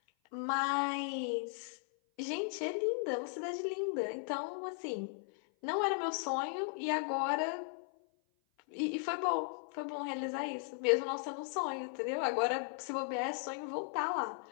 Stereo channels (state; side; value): silent; right; 53 dB below the other